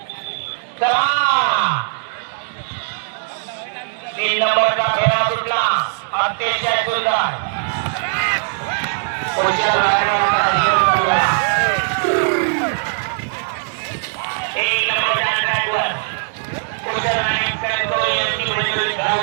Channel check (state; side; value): silent; left; 59 dB below the other